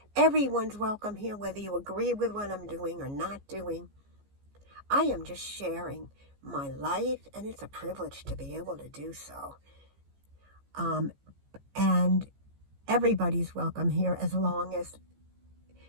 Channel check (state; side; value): late; left; 15 ms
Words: Everyone's welcome here, whether you agree with what I'm doing or not doing. I am just sharing my life, and it's a privilege to be able to do so. And everybody's welcome here as long as,